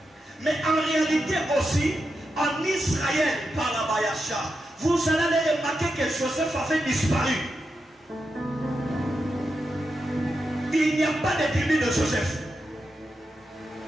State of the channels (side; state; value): both; normal; correlation 0.87